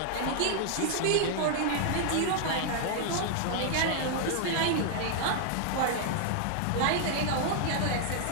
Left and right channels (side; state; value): both; different; correlation 0.00